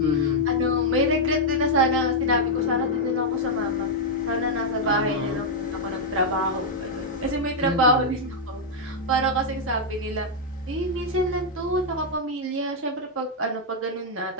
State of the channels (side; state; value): both; normal; correlation -0.03